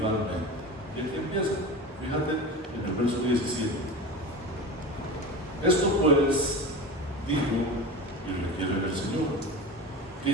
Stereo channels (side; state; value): both; normal; correlation 0.29